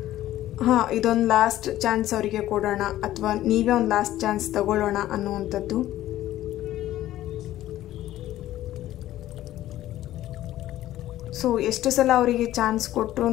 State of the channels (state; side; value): quieter; right; 14.0 dB